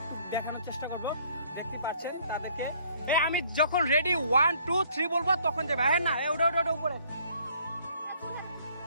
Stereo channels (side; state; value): both; inverted; correlation -0.60